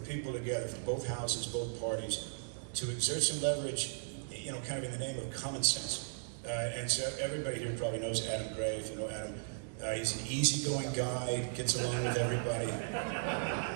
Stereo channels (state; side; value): silent; left; digital silence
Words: people together from both houses, both parties, to exert some leverage, you know, kind of in the name of common sense. And so everybody here probably knows Adam Gray, if you know Adam. He's an easygoing guy, gets along with everybody,